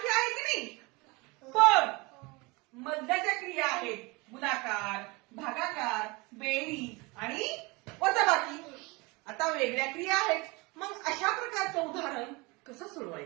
आहेत की नाही? पण मधल्याच्या क्रिया आहेत गुणाकार, भागाकार, बेरीज आणि वजाबाकी. आता वेगळ्या क्रिया आहेत. मग अशा प्रकारचं उदाहरण कसं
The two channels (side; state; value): left; quieter; 25.1 dB